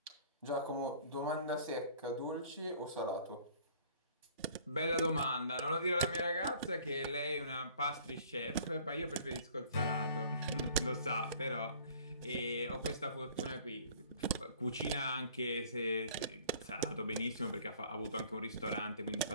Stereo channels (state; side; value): inverted; both; correlation -0.52